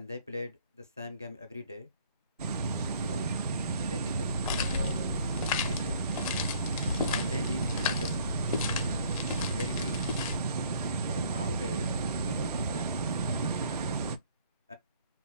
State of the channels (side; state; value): both; inverted; correlation -0.57